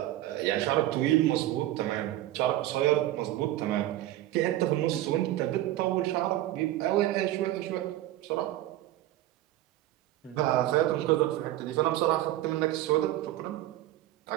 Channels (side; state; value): left; quieter; 14.8 dB